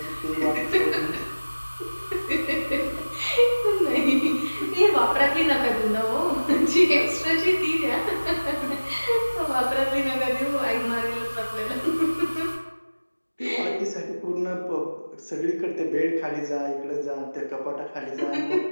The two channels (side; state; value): both; inverted; correlation -1.00